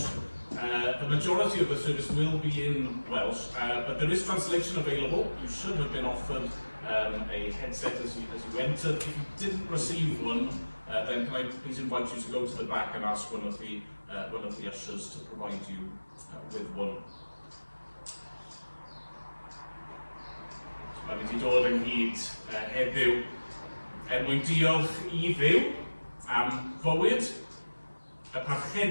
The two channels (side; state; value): both; inverted; correlation -1.00